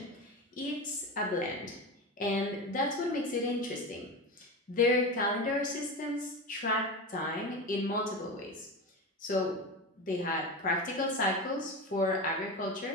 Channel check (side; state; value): both; normal; correlation 0.24